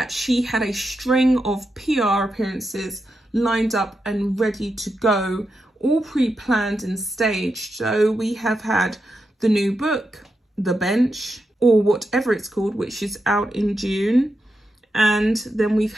she had a string of PR appearances lined up and ready to go, all pre-planned and staged. So we have had the new book, The Bench, or whatever it's called, which is out in June. And then we've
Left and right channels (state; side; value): normal; both; correlation 0.87